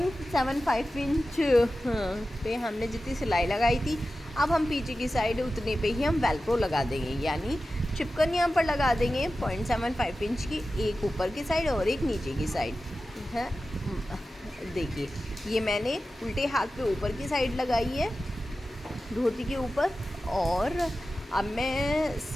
पे हमने जितनी सिलाई लगाई थी, अब हम पीछे की साइड उतने पे ही हम वेलक्रो लगा देंगे, यानी चिपकन यहाँ पर लगा देंगे 0.75 इंच की, एक ऊपर की साइड और एक नीचे की साइड है। देखिए ये मैंने उल्टे हाथ पे ऊपर की साइड लगाई है धोती के ऊपर, और अब मैं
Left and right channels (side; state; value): both; normal; correlation 0.94